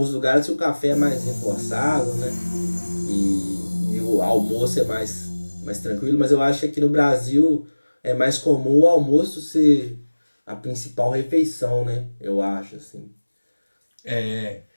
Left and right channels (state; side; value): inverted; both; correlation -1.00